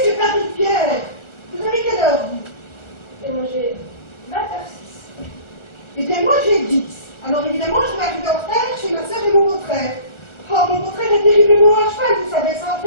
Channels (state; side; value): late; right; 1.4 ms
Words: que t'as dit, Pierre? Vous avez quelle heure, vous? Et moi j'ai 20h06. Eh bien, moi j'ai 10. Alors évidemment, je vais arriver en retard chez ma soeur et mon beau-frère. Oh, mon beau-frère est terriblement à cheval, vous savez, ça va